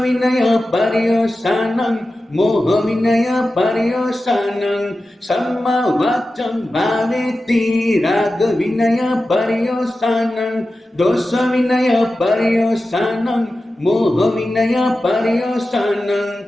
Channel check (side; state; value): both; normal; correlation 0.93